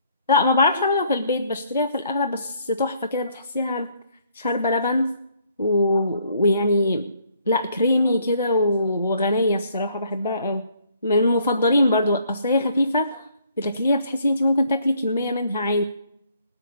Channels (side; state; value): both; inverted; correlation -0.65